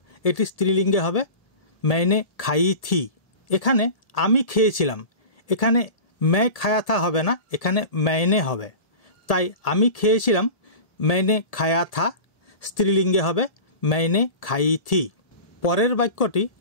এটি স্ত্রীলিঙ্গে হবে मैंने खाई थी। এখানে আমি খেয়েছিলাম, এখানে मैं खाया था হবে না, এখানে मैंने হবে, তাই আমি খেয়েছিলাম मैंने खाया था স্ত্রীলিঙ্গে হবে मैंने खाई थी। পরের বাক্যটি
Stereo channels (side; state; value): right; late; 1.7 ms